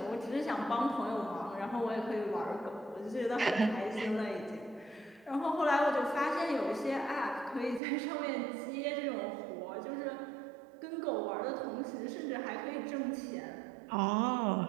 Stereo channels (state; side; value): drops out; left; at 7.8 s